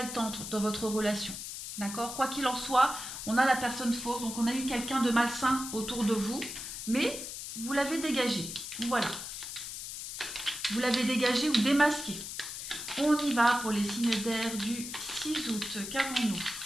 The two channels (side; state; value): left; noise; hiss, 8 dB below the sound